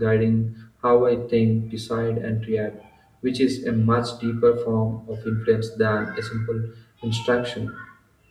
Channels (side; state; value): both; identical; correlation 1.00